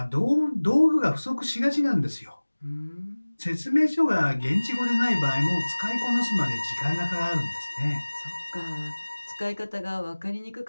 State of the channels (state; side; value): inverted; both; correlation -1.00